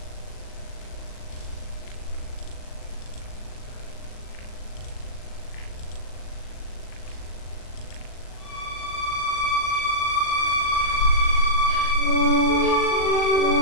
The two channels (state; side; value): late; right; 39 ms